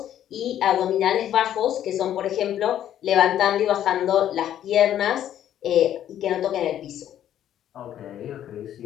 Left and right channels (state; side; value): quieter; right; 11.0 dB